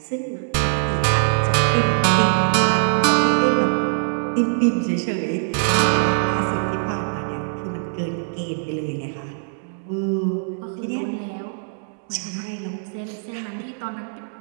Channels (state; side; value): silent; left; digital silence